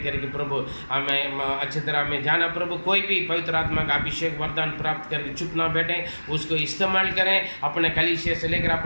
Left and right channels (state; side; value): inverted; both; correlation -1.00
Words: प्रभु हमें अच्छी तरह में जाना। प्रभु कोई भी पवित्र आत्मा का अभिषेक वरदान प्राप्त करके चुप ना बैठे, उसको इस्तेमाल करें। अपने कलीसिया से लेकर,